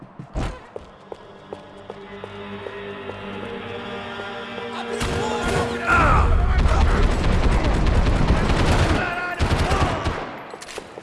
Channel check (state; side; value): identical; both; correlation 1.00